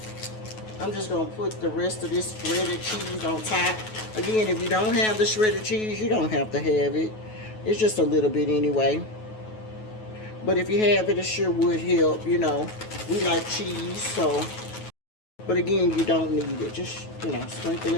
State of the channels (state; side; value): late; right; 9.3 ms